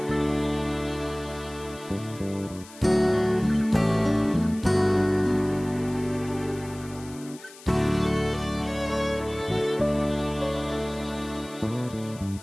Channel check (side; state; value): left; noise; hiss, 20 dB below the sound